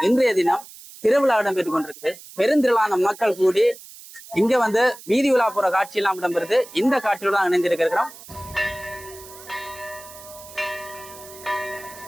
இன்றைய தினம் திருவிழா இடம்பெற்றுக் கொண்டிருக்கு. பெருந்திரளான மக்கள் கூடி இங்க வந்து வீதி விழா போற காட்சி எல்லாம் இடம்பெறுது. இந்த காட்சியோட தான் இணைந்திருக்கிறோம்.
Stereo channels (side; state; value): right; noise; hiss, 18 dB below the sound